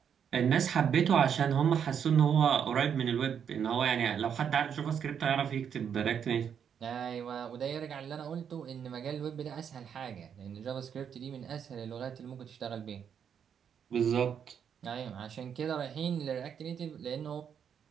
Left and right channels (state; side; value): quieter; left; 7.9 dB